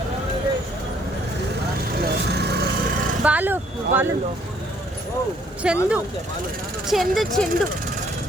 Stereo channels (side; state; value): both; normal; correlation 0.64